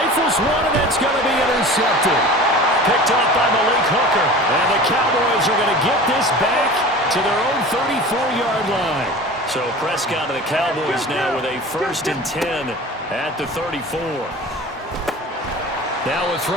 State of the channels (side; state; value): both; normal; correlation 0.38